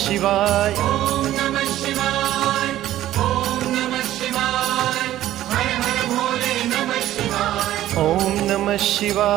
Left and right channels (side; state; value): left; quieter; 13.6 dB